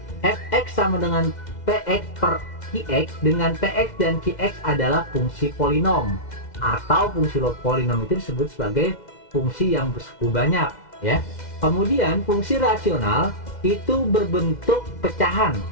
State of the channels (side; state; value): right; late; 2.1 ms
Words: fx sama dengan px per qx, dengan px dan qx adalah fungsi polinom, atau fungsi polinom itu disebut sebagai fungsi yang bersuku banyak ya. Kemudian fungsi rasional itu berbentuk pecahan